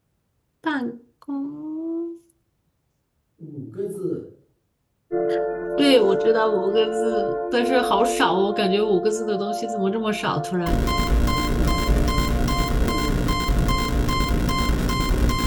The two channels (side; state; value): both; identical; correlation 1.00